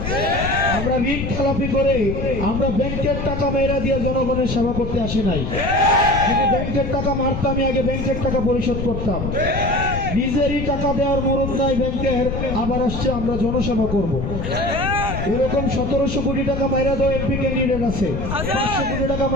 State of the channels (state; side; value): noise; left; rumble, 4 dB below the sound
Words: আমরা ঋণ খেলাপি করে আমরা ব্যাংকের টাকা মেয়েরা দিয়ে জনগণের সেবা করতে আসি নাই। যদি ব্যাংকের টাকা মারতাম, আগে ব্যাংকের টাকা পরিশোধ করতাম। নিজেরই টাকা দেওয়ার মরদ নাই ব্যাংকের, আবার আসছে আমরা জনসেবা করব। এরকম 1700 কোটি টাকা মাইরা দেওয়া এমপি ক্যান্ডিডেট আছে, 500 কোটি টাকা